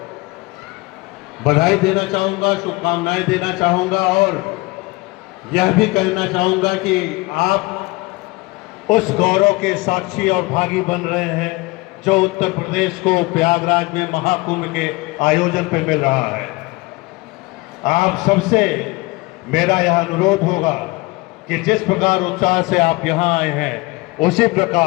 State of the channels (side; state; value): right; quieter; 23.0 dB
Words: बधाई देना चाहूंगा, शुभकामनाएं देना चाहूंगा, और यह भी कहना चाहूंगा कि आप उस गौरव के साक्षी और भागी बन रहे हैं जो उत्तर प्रदेश को प्रयागराज में महाकुंभ के आयोजन पर मिल रहा है। आप सबसे मेरा यह अनुरोध होगा कि जिस प्रकार उत्साह से आप यहाँ आए हैं, उसी